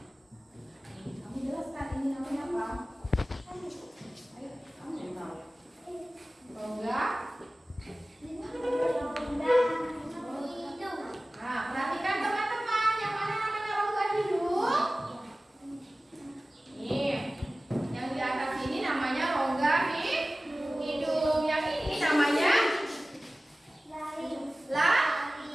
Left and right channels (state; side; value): normal; both; correlation 0.97